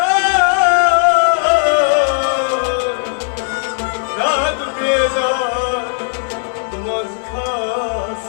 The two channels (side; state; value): right; silent; 69 dB below the other